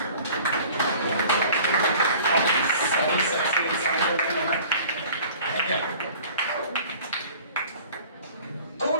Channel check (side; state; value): both; inverted; correlation -0.47